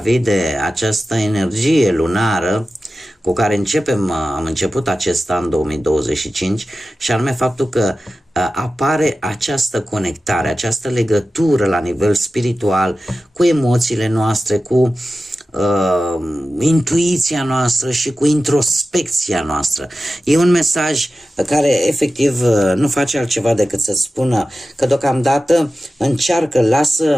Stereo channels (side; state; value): both; normal; correlation 0.94